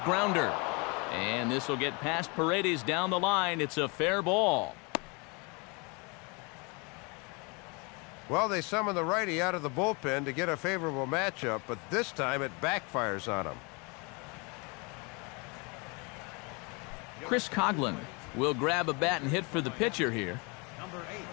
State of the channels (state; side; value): quieter; right; 30.3 dB